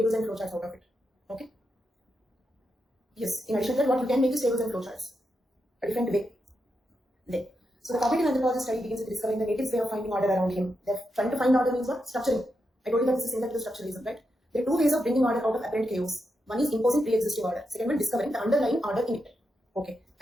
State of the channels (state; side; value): normal; both; correlation 0.85